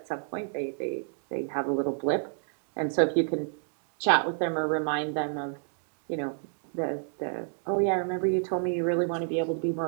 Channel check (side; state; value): left; silent; digital silence